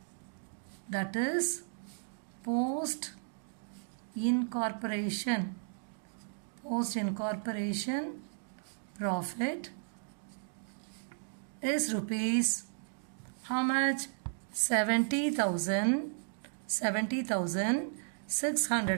that is post-incorporation profit is rupees how much?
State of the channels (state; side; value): silent; left; digital silence